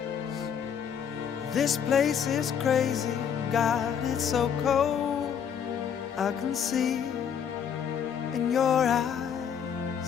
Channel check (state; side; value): quieter; right; 8.0 dB